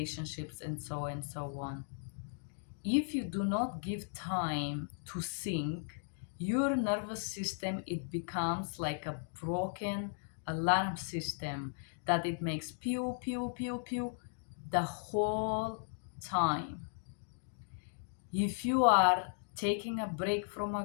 and so on. If you do not give time to think, your nervous system, it becomes like a broken alarm system that it makes pew pew pew pew the whole time. If you are taking a break from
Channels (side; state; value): right; silent; digital silence